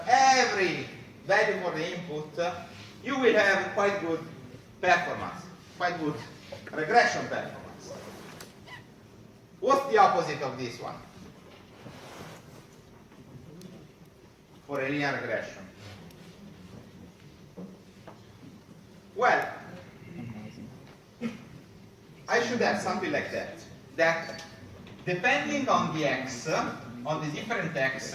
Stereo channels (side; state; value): both; identical; correlation 1.00